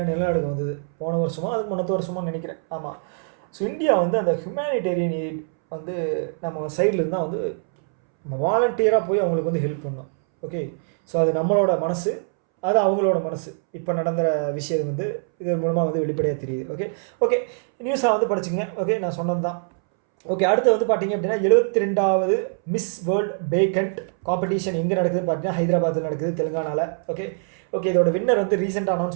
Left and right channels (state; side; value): silent; left; 63 dB below the other